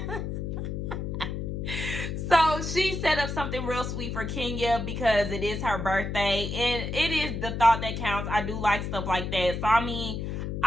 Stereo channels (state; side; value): noise; left; hum, 4 dB below the sound